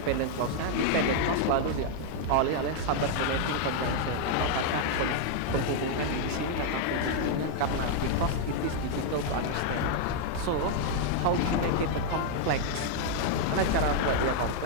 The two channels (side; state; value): both; different; correlation 0.00